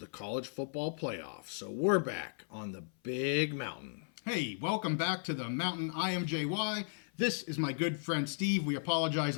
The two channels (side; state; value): right; silent; 54 dB below the other